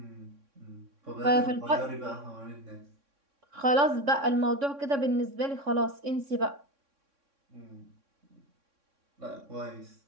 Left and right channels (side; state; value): left; late; 3.6 ms